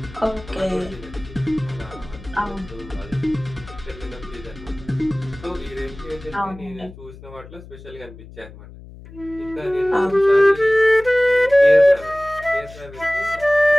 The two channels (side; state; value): left; noise; hum, 18 dB below the sound